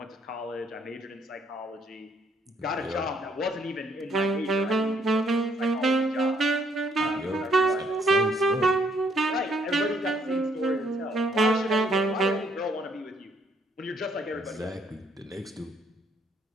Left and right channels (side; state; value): both; normal; correlation 0.68